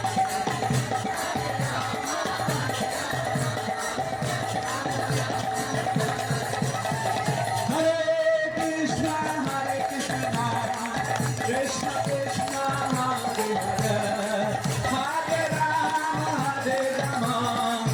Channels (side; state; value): both; identical; correlation 1.00